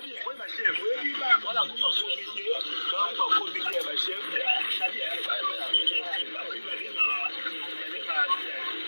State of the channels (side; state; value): both; inverted; correlation -1.00